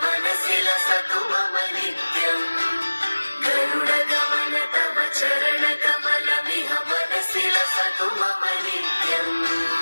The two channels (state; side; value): inverted; both; correlation -1.00